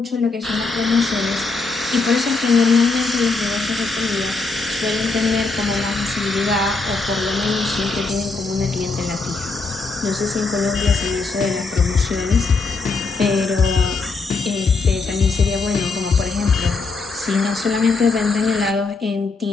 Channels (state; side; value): quieter; right; 3.9 dB